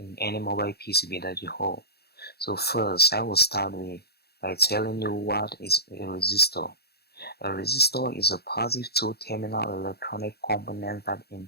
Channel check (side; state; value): right; late; 0.46 ms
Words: any mobile PCB that you hold. So first, I will start by telling you what is a resistor. A resistor is a positive two-terminal electronic component that